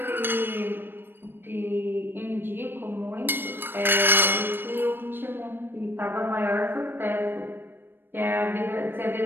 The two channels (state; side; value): late; left; 0.098 ms